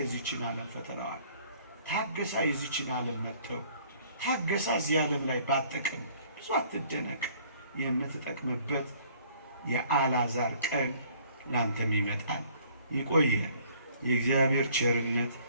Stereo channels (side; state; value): both; inverted; correlation -0.58